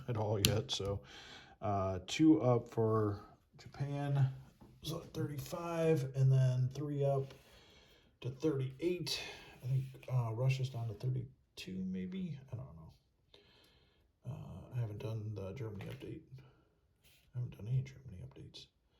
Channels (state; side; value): identical; both; correlation 1.00